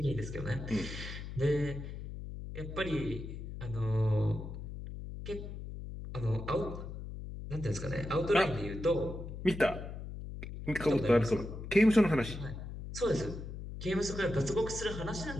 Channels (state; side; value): noise; left; hum, 9 dB below the sound